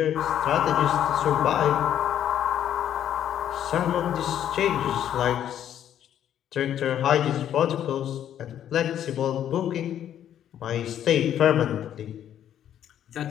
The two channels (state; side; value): quieter; right; 10.4 dB